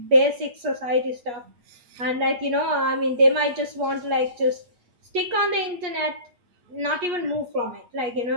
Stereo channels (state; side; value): late; left; 8.4 ms